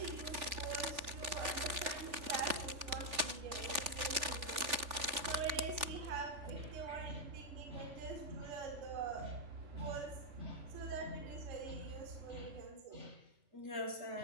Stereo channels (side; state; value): left; late; 3.4 ms